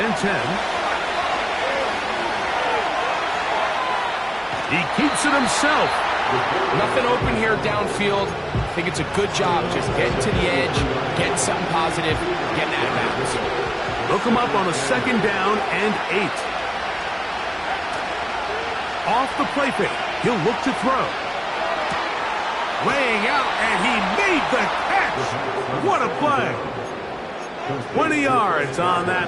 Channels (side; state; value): both; identical; correlation 1.00